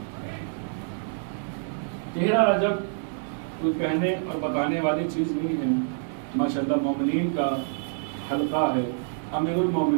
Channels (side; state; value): left; silent; digital silence